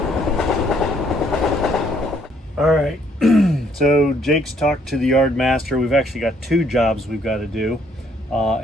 All right, so Jake's talked to the yard master. We've actually got two jobs we've got to do.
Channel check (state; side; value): normal; both; correlation 0.66